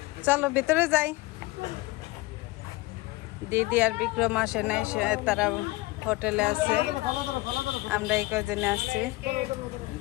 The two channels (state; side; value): quieter; right; 20.8 dB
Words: চলো ভিতরে যাই। দিদি আর বিক্রম আসে নাই, তারা হোটেলে আছে। আমরা এই কজনে আসছি।